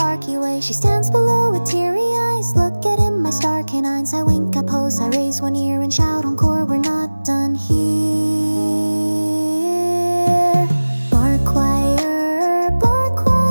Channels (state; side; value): inverted; both; correlation -1.00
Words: way. She stands below with teary eyes, look at him, my star canines. I wink, I pose, I raise one ear and shout encore, we're not done here. Bark choir,